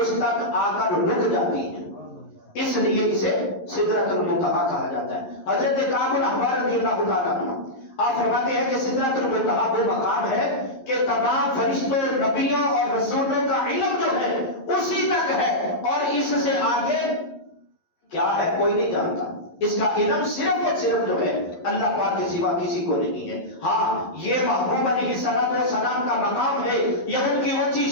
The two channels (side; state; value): right; late; 11 ms